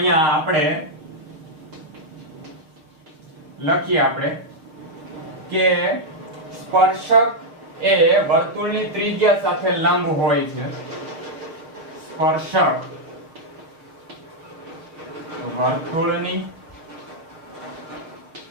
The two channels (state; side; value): late; left; 6.1 ms